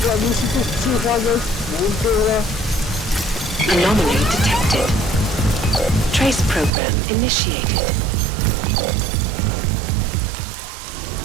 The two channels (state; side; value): drops out; left; at 6.7 s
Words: misi tu save lah guys, bodoh lah. Anomaly detected. Trace program initiated.